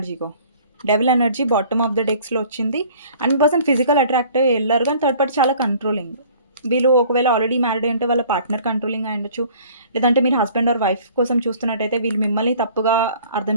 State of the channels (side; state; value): both; inverted; correlation -0.52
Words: Devil energy bottom of the డెక్స్‌లో వచ్చింది. అండ్ మీ పర్సన్ ఫిజికల్ అట్రాక్ట్ అయ్యి వెళ్లారు కానీ థర్డ్ పార్టీ చాలా కంట్రోలింగ్. వీళ్ళు ఒకవేళ ఆల్రెడీ మ్యారీడ్ అయ్యుంటే వాళ్ళ పార్ట్నర్ కంట్రోలింగ్ అయ్యుండొచ్చు. లేదంటే మీరు హస్బెండ్ ఆర్ వైఫ్ కోసం చూస్తున్నట్టయితే వీళ్ళు మిమ్మల్ని తప్పుగా అర్థం